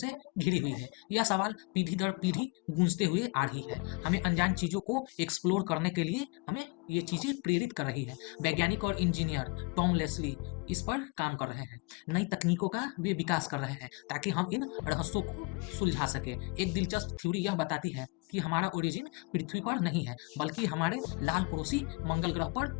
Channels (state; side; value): quieter; right; 30.5 dB